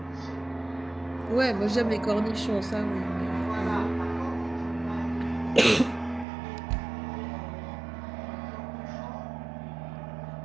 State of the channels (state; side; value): drops out; left; at 6.2 s